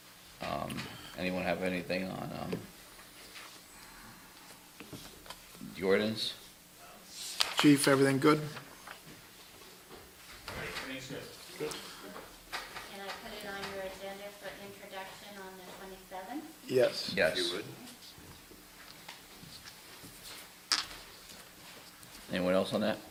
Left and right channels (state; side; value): identical; both; correlation 1.00